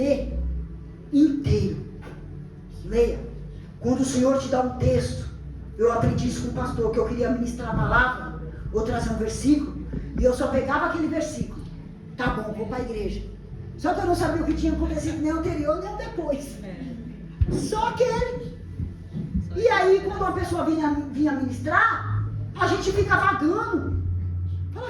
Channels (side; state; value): both; identical; correlation 1.00